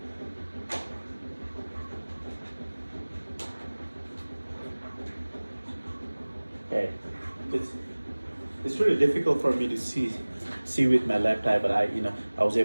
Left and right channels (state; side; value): inverted; both; correlation -1.00